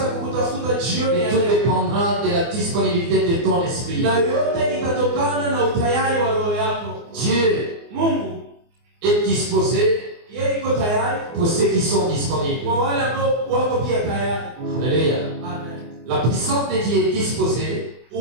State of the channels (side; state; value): left; late; 24 ms